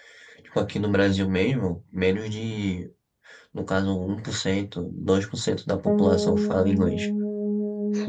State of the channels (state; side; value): identical; both; correlation 1.00